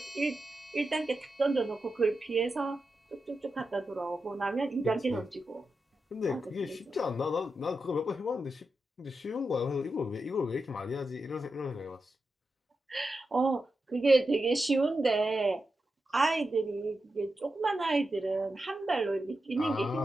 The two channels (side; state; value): both; normal; correlation 0.89